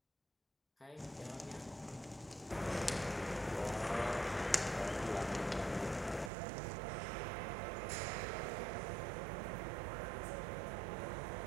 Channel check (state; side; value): drops out; left; at 6.3 s